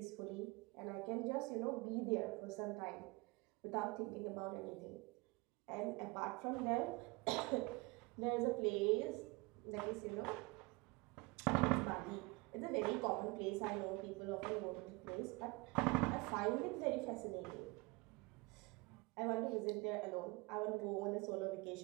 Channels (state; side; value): quieter; left; 26.0 dB